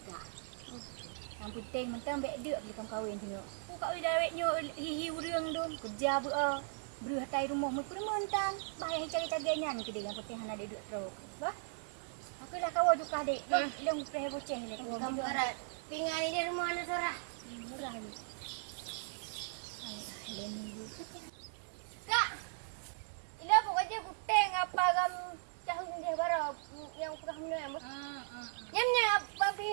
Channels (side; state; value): left; silent; digital silence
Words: Yang penting mentang bek dek beli kawin tengok. Ku kawin dawetnya hihi urang dong kerja beu. Beruh tai rumah mu pun mentan. Bahaya cari-carinya ni kedai yang penting hana dek duk teruk. Bah. Aku dah kawan juga dek. Long preh boceh le. Kamu berat. Pingan ni dia rumah anak sorah. Murah je. Alah, leni dulu. Kak. Ila pokoknya kuteng apa gam tahu dia baru yang pernah menang. Nyamnya bagi